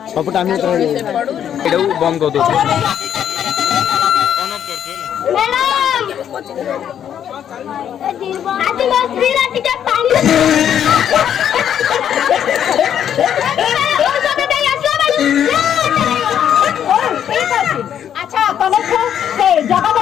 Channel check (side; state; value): right; quieter; 9.4 dB